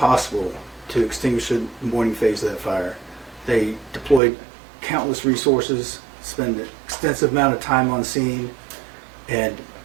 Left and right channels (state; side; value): drops out; left; at 4.2 s